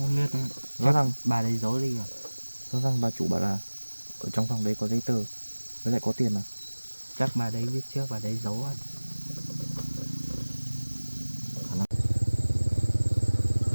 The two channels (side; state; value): both; inverted; correlation -1.00